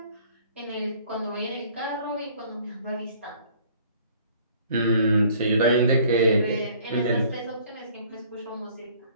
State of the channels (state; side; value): inverted; both; correlation -0.55